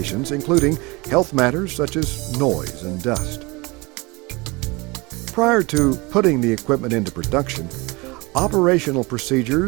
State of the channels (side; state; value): left; quieter; 25.1 dB